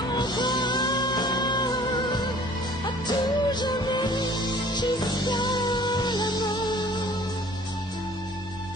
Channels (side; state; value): right; noise; hum, 18 dB below the sound